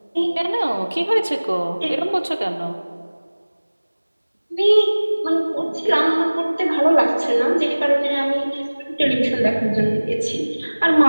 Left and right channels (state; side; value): inverted; both; correlation -1.00